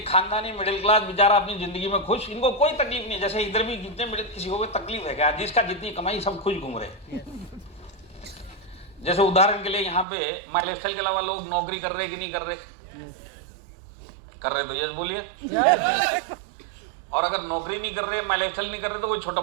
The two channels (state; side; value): drops out; left; at 10.1 s